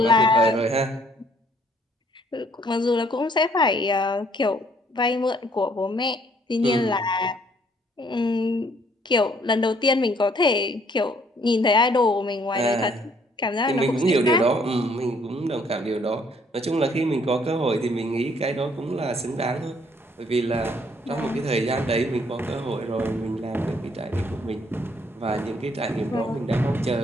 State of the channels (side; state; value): both; normal; correlation 0.64